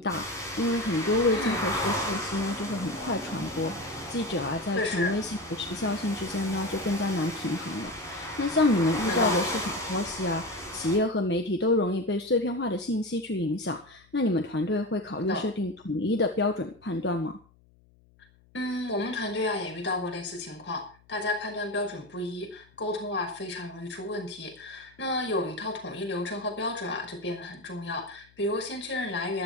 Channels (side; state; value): left; noise; hum, 30 dB below the sound